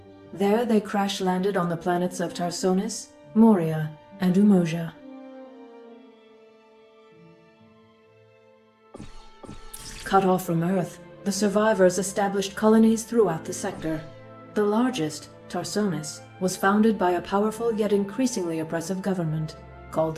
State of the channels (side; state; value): both; identical; correlation 1.00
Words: There they crash-landed on the planets of Tarsonis, Moria, and Umoja. Cut off from Earth, the survivors established colonies throughout the sector. The largest, Tarsonis, was founded by a powerful yet increasingly oppressive government called